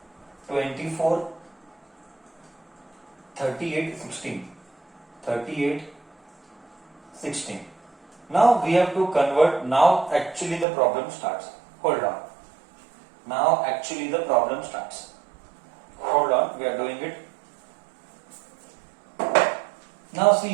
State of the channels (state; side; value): drops out; left; at 10.7 s